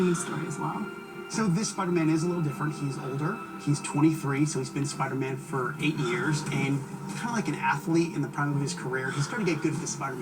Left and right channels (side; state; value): both; identical; correlation 1.00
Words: story as well. So this Spider-Man is a little different. He's older. He's 23, so he's been Spider-Man for 8 years. And kind of like an athlete in the prime of his career, he's starting to get good at the